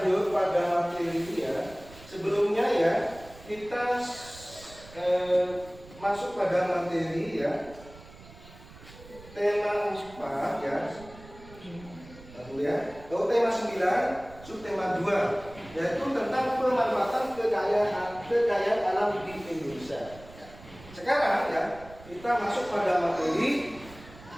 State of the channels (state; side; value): noise; right; rumble, 19 dB below the sound